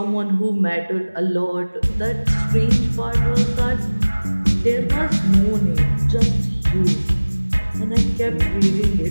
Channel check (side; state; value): both; inverted; correlation -1.00